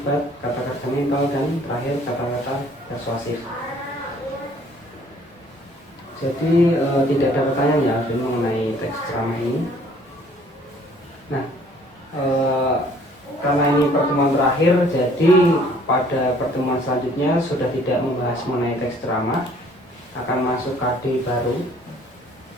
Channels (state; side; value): normal; both; correlation 0.58